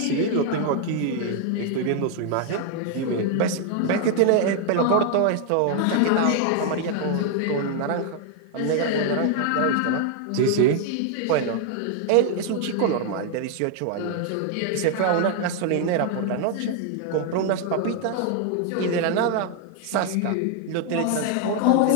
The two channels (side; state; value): both; different; correlation 0.00